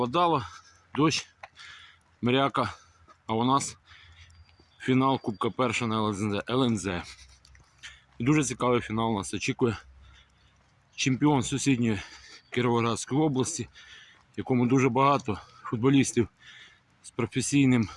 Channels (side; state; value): both; identical; correlation 1.00